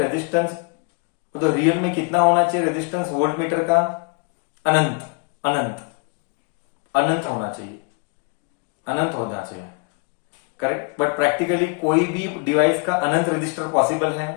resistance? तो रियल में कितना होना चाहिए रेजिस्टेंस वोल्टमीटर का? अनंत होना चाहिए. करेक्ट. बट प्रैक्टिकली कोई भी डिवाइस का अनंत रेजिस्टर पॉसिबल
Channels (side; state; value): right; quieter; 35.4 dB